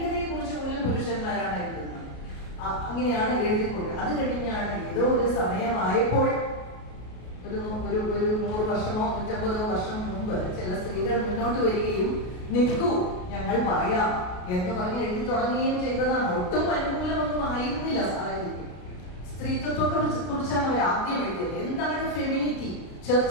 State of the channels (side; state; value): right; late; 33 ms